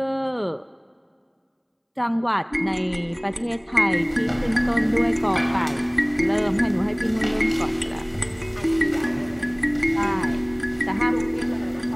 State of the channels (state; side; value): identical; both; correlation 1.00